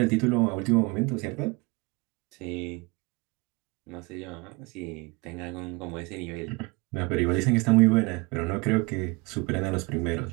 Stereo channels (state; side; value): quieter; left; 26.6 dB